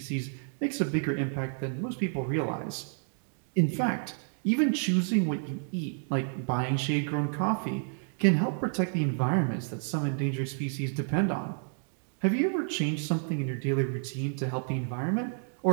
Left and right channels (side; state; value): left; silent; 56 dB below the other